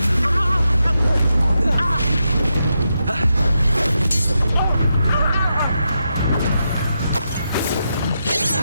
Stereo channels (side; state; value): both; inverted; correlation -0.85